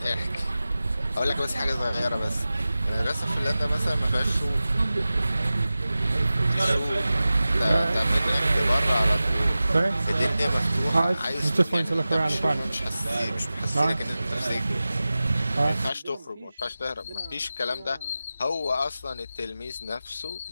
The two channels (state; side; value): inverted; both; correlation -0.95